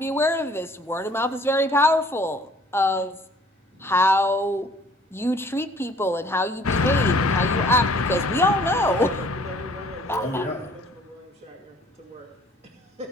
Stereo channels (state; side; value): normal; both; correlation 0.56